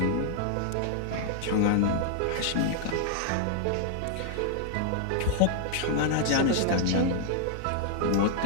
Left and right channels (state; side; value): different; both; correlation 0.00